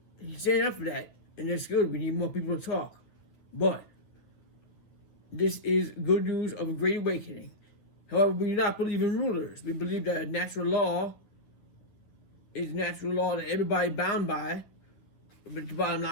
he's standing up for that, and that's good. We need more people to talk. But this is good news of a great awakening. However, we do not believe in rulers. We believe that a natural law is a natural law that everybody bound by. But the bottom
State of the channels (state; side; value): late; right; 9.2 ms